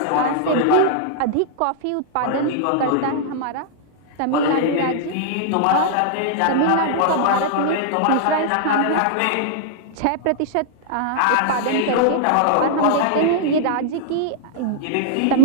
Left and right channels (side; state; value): both; different; correlation -0.01